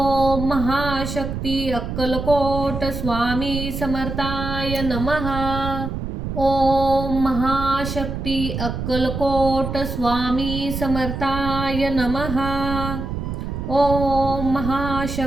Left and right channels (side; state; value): right; noise; rumble, 5 dB below the sound